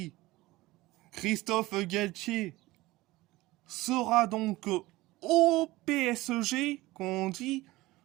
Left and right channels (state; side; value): quieter; left; 19.2 dB